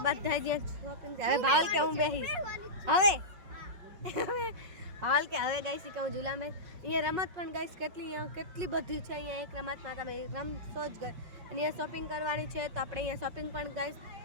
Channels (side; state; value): left; late; 5.4 ms